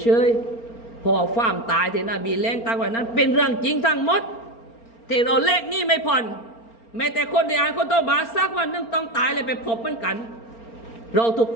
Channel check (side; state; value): right; late; 4.4 ms